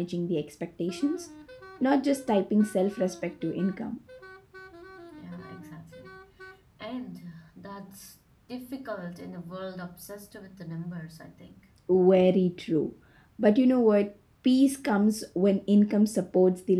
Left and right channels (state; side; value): identical; both; correlation 1.00